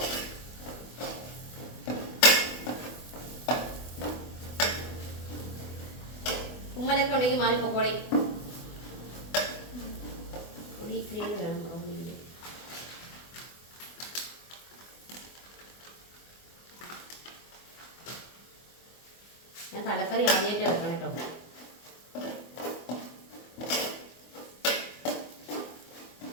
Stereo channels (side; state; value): right; late; 24 ms